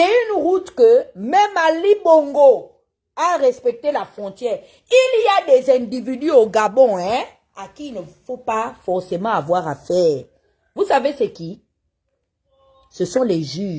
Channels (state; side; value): identical; both; correlation 1.00